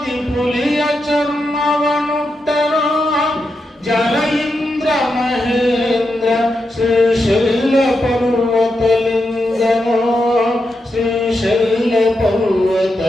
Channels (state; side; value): normal; both; correlation 0.86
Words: ಪುಲಿಯ ಚರ್ಮವನುಟ್ಟನೋ ಜಲ ಇಂದ್ರ ಮಹೇಂದ್ರ ಶ್ರೀಶೈಲ ಪರ್ವತಲಿಂಗನೋ ಶ್ರೀಶೈಲ